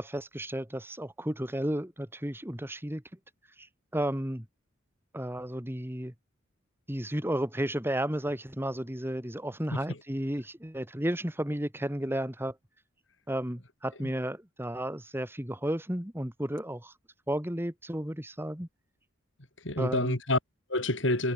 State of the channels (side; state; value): both; normal; correlation 0.68